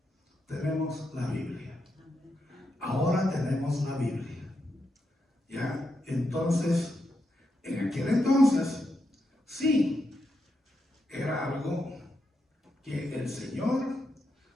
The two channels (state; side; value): normal; both; correlation 0.84